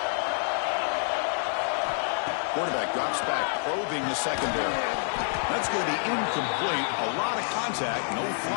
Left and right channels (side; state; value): right; silent; 55 dB below the other